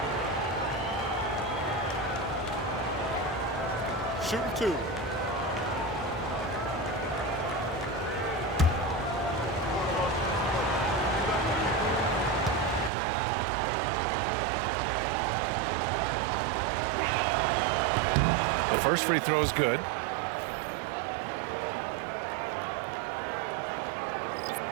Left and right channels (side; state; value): left; drops out; at 12.9 s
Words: Shooting 2. The first free throw is good.